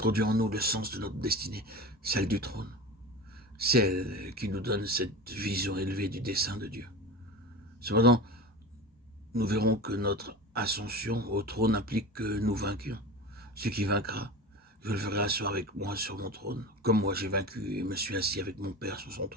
en nous le sens de notre destinée, celle du trône, celle qui nous donne cette vision élevée du dessein de Dieu. Cependant, nous verrons que notre ascension au trône implique que nous vainquions. Ce qui vaincra, je le ferai asseoir avec moi sur mon trône, comme moi j'ai vaincu et me suis assis avec mon Père sur son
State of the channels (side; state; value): both; normal; correlation 0.31